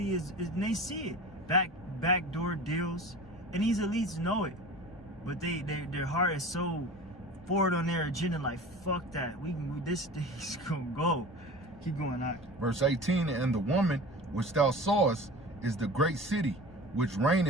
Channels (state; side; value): normal; both; correlation 0.37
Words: is and they see it. Backdoor deals, and these elites know it, but their heart is so forward on their agenda, like fuck that. This thing's gonna go. Keep going out. Verse 18, and the woman which thou sawest is the great city which